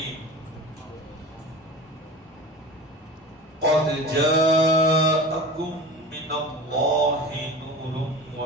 قد جاءكم من الله نور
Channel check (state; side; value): normal; both; correlation 0.34